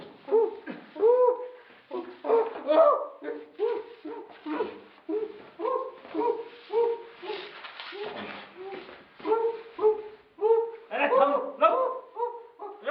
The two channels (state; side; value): identical; both; correlation 1.00